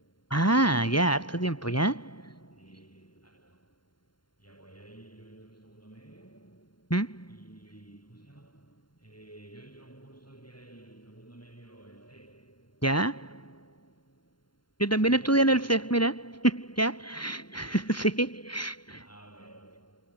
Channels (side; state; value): right; late; 0.72 ms